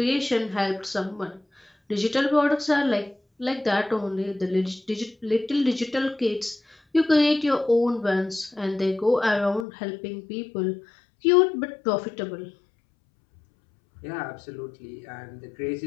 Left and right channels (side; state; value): right; drops out; at 9.7 s